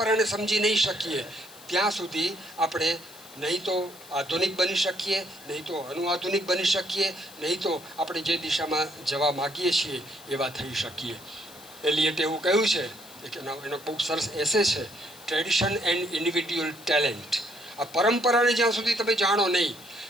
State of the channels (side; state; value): left; noise; hiss, 20 dB below the sound